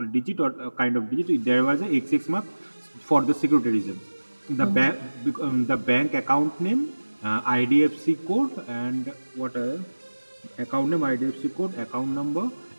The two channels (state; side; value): inverted; both; correlation -1.00